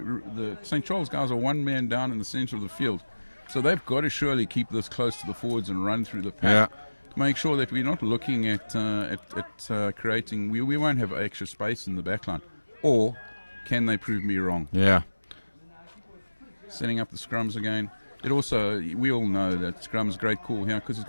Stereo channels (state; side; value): inverted; both; correlation -1.00